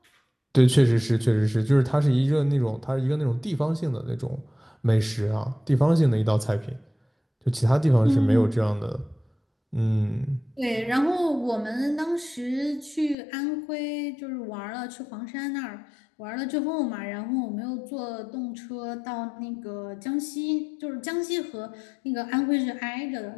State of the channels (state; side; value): drops out; right; at 13.2 s